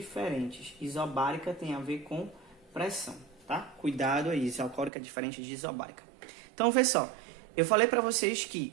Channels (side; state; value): left; drops out; at 4.9 s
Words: Isobárica tem a ver com pressão, tá? Cuidado aí, isocórica é diferente de isobárica. Então, vê só. Eu falei para vocês